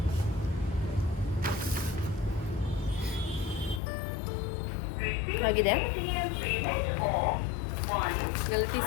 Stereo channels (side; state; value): right; drops out; at 3.8 s